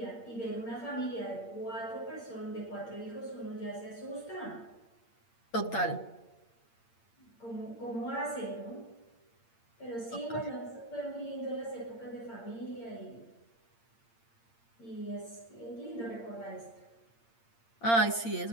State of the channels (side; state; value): right; late; 8.7 ms